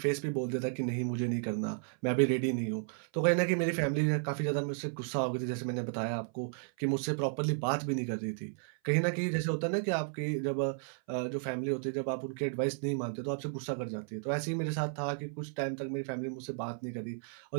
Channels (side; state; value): left; silent; 55 dB below the other